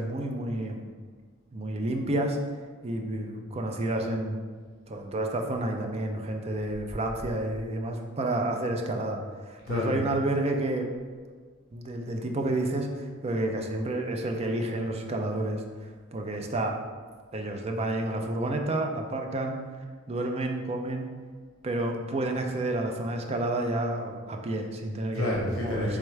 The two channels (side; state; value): both; normal; correlation 0.50